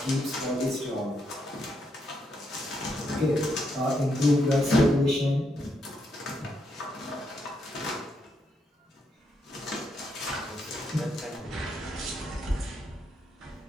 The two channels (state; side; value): normal; both; correlation 0.79